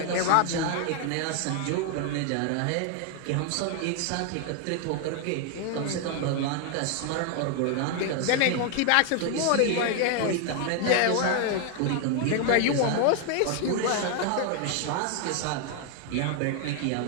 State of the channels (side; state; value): both; different; correlation 0.01